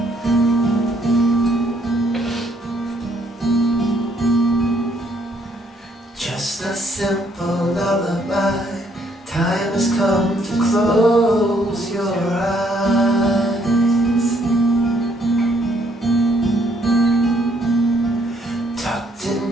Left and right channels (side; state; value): both; normal; correlation 0.69